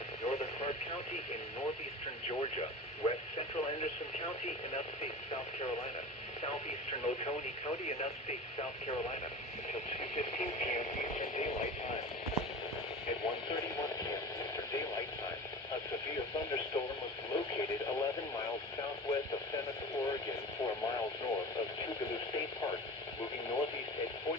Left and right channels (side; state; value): both; normal; correlation 0.34